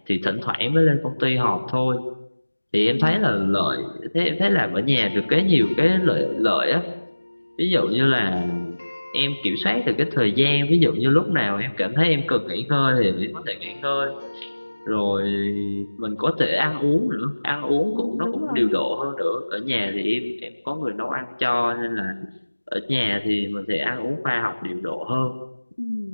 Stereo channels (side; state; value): both; inverted; correlation -1.00